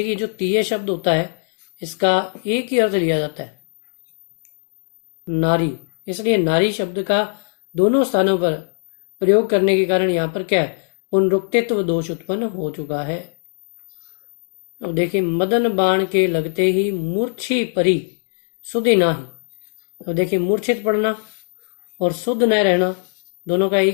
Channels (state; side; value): silent; right; digital silence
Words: जो तिये शब्द होता है इसका एक ही अर्थ लिया जाता है नारी, इसलिए नारी शब्द का दोनों स्थानों पर प्रयोग करने के कारण यहाँ पर क्या है, पुनरुक्तित्व दोष उत्पन्न हो चुका है। अब देखिए मदन बाण के लगते ही मूर्छी परी सुधि नाही। अब देखिए मूर्छित पड़ना और शुद्ध न रहना दोनों का